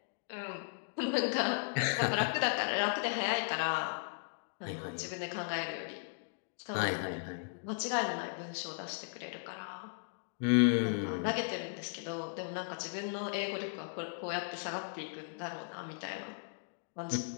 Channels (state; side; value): silent; right; digital silence